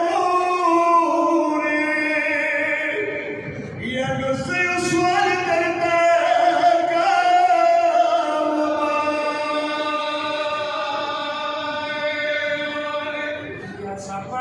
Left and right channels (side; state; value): both; identical; correlation 1.00